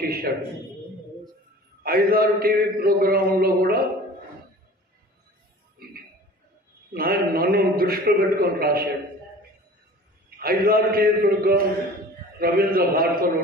చేశాడు. 5-6 టీవీ ప్రోగ్రాంలో కూడా నన్ను దృష్టిలో పెట్టుకొని రాశాడు. 5-6 టీవీ ప్రోగ్రాం రవీంద్ర భారతిలో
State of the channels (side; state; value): both; normal; correlation 0.43